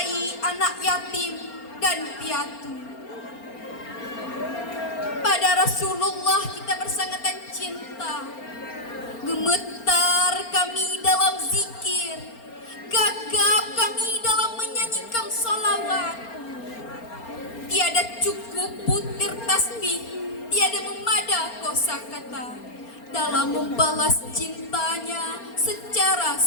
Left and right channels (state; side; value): late; right; 4.3 ms